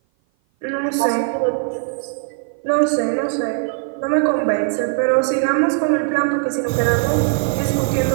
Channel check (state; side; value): silent; left; 56 dB below the other